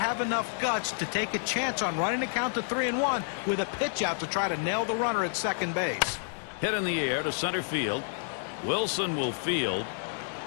enough guts to take a chance on running the count to 3-1 with a pitch out to try to nail the runner at second base? Hit in the air to center field. Wilson will field.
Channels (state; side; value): silent; right; 58 dB below the other